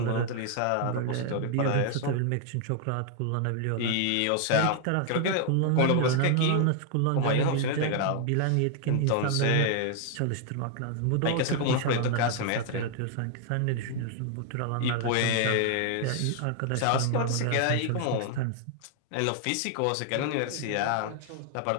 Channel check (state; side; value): different; both; correlation 0.00